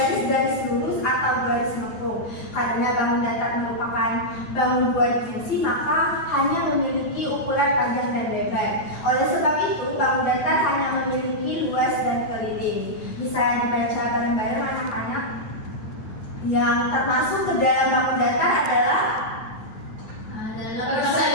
lurus atau garis lengkung. Karena bangun datar merupakan bangun dua dimensi, maka hanya memiliki ukuran panjang dan lebar. Oleh sebab itu, bangun datar hanya memiliki luas dan keliling. Bisa dibaca bareng-bareng anak-anak. Yang termasuk ke dalam bangun datar adalah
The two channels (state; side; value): late; right; 9.1 ms